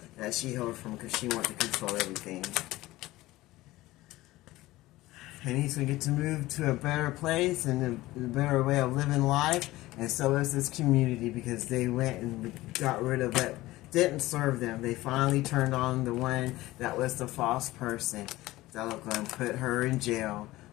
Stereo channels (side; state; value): right; quieter; 17.9 dB